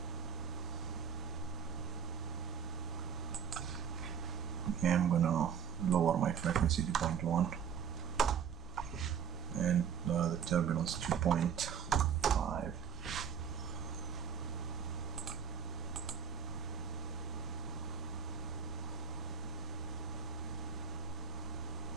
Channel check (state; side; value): quieter; left; 7.4 dB